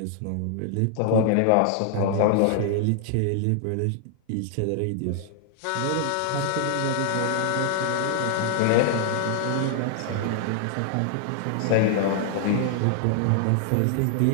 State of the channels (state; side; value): different; both; correlation 0.00